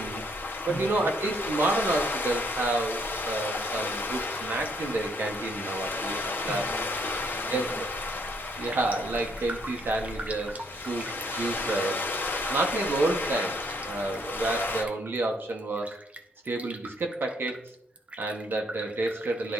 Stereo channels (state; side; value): normal; both; correlation 0.69